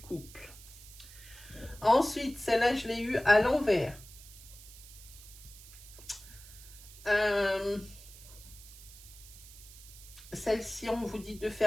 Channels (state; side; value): noise; right; hiss, 18 dB below the sound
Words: Ensuite, celle-là, je l'ai eue à l'envers. Celle-ci, on vous dit de